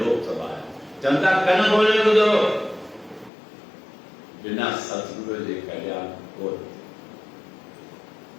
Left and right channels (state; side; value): drops out; right; at 3.3 s